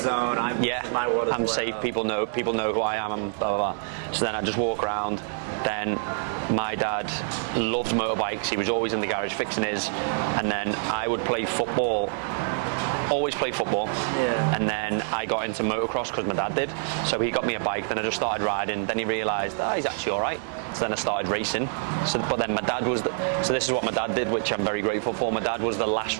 My world. I'm safe. People know who I am, and blah blah blah. So then I just walk around. Then my dad loved motorbikes. He was always in the garage fixing his, and then I would play football. Always play football. Yeah. And then I got into motocross because my dad did. So he got me a bike. Then I just started riding. Then he realised he's actually all right. So then I started racing. But then my dad was. So this is what my dad did, which I'm very grateful for. My dad was the last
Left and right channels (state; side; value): silent; left; digital silence